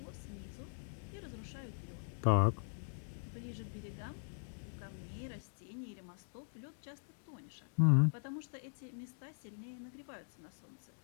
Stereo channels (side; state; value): right; silent; digital silence